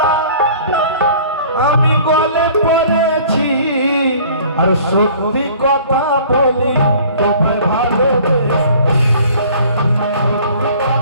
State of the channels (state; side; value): inverted; both; correlation -0.50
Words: আমি গলে পড়েছি। আর সত্যি কথা বলি, তোমায় ভালোবেসে